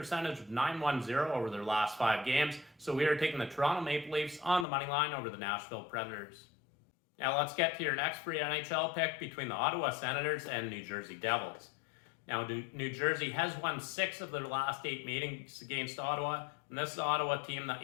of .910 over their last 5 games. So we are taking the Toronto Maple Leafs on the money line over the Nashville Predators. Now let's get to your next free NHL pick between the Ottawa Senators and New Jersey Devils. Now, New Jersey has won 6 of their last 8 meetings against Ottawa, and this is an Ottawa team that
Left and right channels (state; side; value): drops out; right; at 4.7 s